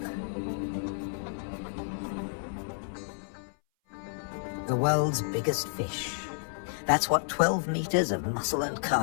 The world's biggest fish. That's what 12 meters of muscle and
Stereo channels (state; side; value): silent; right; 57 dB below the other